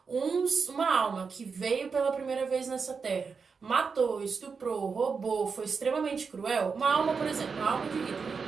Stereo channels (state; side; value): quieter; left; 5.3 dB